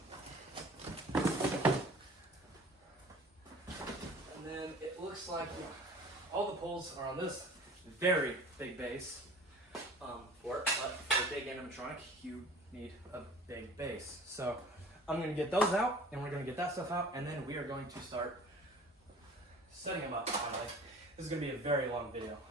And then it looks like all the poles are on this very big base for it, but for a big animatronic, you need a big base. So I'm gonna get those out, and we're gonna get that stuff out, and then we are going to start setting them up finally. This is going to be a very long video.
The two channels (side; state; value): both; normal; correlation 0.45